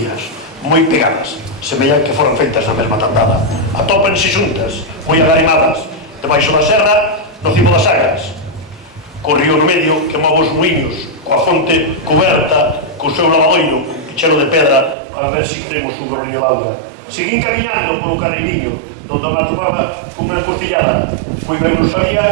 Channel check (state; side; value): drops out; left; at 15.0 s